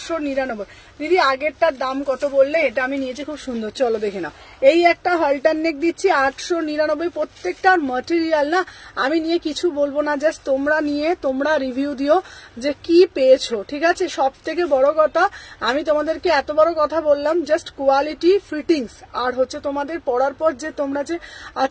দিদি আগেরটার দাম কত বললে? এটা আমি নিয়েছি, খুব সুন্দর। চলো দেখে নাও, এই একটা হলটার নেক দিচ্ছি 899। প্রত্যেকটার ম্যাটেরিয়াল না আমি নিয়ে কিছু বলবো না, জাস্ট তোমরা নিয়ে তোমরা রিভিউ দিও যে কি পেয়েছো, ঠিক আছে। সব থেকে বড় কথা আমি তোমাদেরকে এত বড় কথা বললাম, জাস্ট কোয়ালিটি, ফিটিংস, আর হচ্ছে তোমাদের পরার পর যে তোমরা যে,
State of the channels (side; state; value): both; identical; correlation 1.00